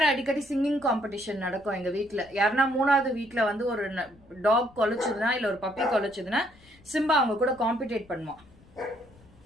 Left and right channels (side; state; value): left; noise; rumble, 27 dB below the sound